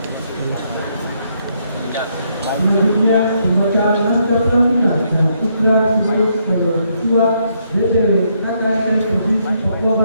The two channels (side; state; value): both; inverted; correlation -0.74